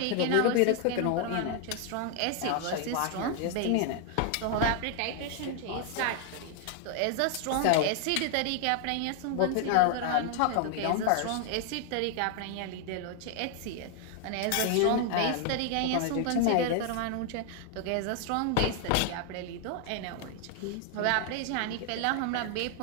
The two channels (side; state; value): both; different; correlation 0.00